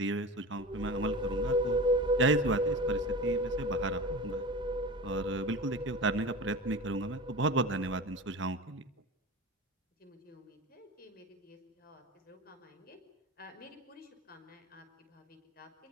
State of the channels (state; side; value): normal; both; correlation 0.31